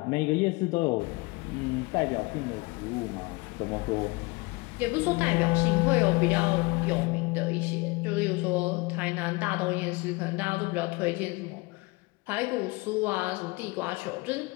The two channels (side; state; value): right; quieter; 24.9 dB